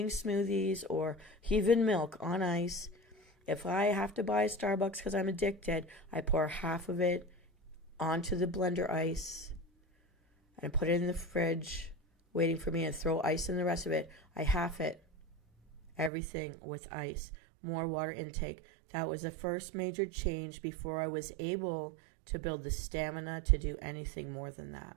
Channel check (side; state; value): left; drops out; at 16.1 s